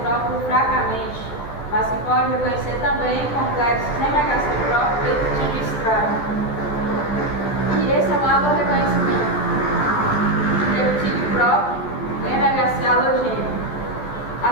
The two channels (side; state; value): right; late; 13 ms